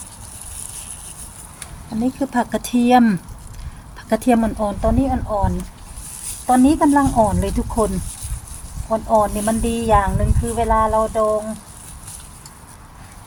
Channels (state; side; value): identical; both; correlation 1.00